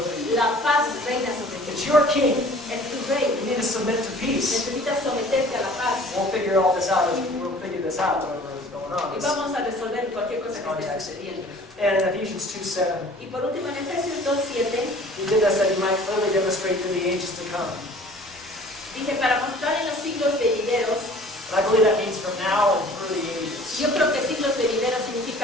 you. la paz reina sobre ti. It's your king. Es tu rey. You need to submit to peace. Necesitas someterte a la paz. We'll figure all this out. We'll figure this out, whatever is going on. Y vamos a resolver cualquier cosa que esté Context. sucediendo. And in Ephesians 2:7, Y por último, en Efesios 2:7, he did this that he might clearly demonstrate to the ages to come. dice, para mostrar en los siglos venideros, And I believe that means from now and through the ages. yo creo que siglos venideros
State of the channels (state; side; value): normal; both; correlation 0.49